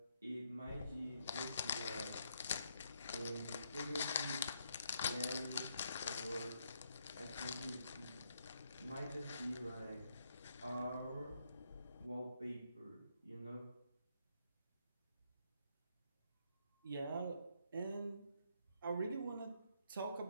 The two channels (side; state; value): both; inverted; correlation -0.75